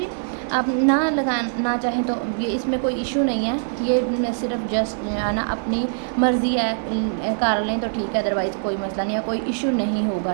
आप ना चाहें तो ये इसमें कोई इशू नहीं है, ये सिर्फ जस्ट है ना अपनी मर्ज़ी है, कर लें तो ठीक है, अदरवाइज़ कोई मसला नहीं है, कोई इशू नहीं होगा,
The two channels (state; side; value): silent; left; digital silence